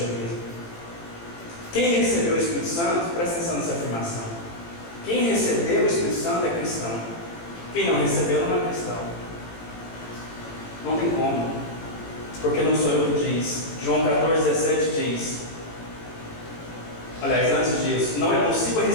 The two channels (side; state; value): right; late; 18 ms